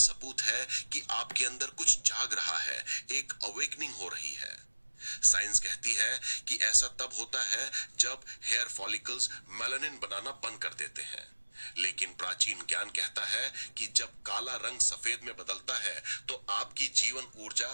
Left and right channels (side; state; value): both; inverted; correlation -1.00